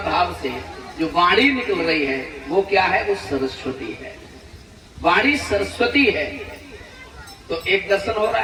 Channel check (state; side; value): identical; both; correlation 1.00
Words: भाव से जो वाणी निकल रही है वो क्या है? वो सरस्वती है। वाणी सरस्वती है। तो एक दर्शन हो रहा